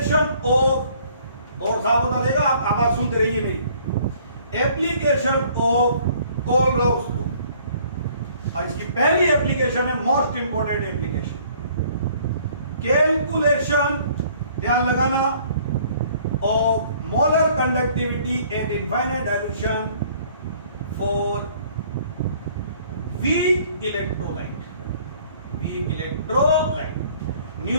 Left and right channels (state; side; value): inverted; both; correlation -0.58